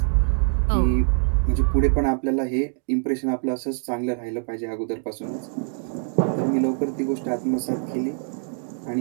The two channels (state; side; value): silent; left; digital silence